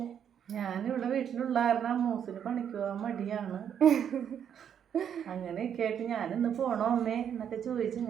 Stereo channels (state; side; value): quieter; left; 8.6 dB